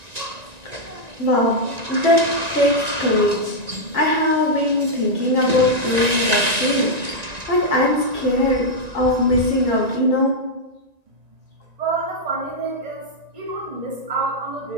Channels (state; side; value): late; left; 1.9 ms